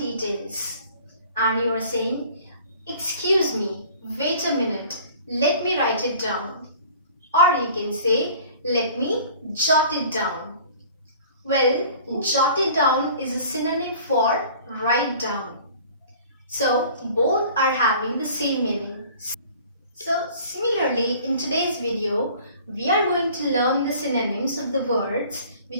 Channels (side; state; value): both; inverted; correlation -0.48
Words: and you are saying, excuse me, wait a minute, let me write it down. Or you can say, let me jot it down. Well, jot it down is a synonym for write down. So both are having the same meaning. So similarly, in today's video, we are going to learn the synonyms of the words